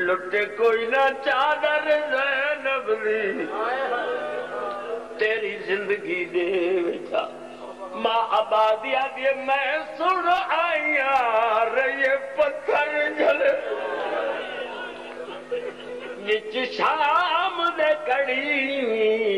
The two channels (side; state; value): both; identical; correlation 1.00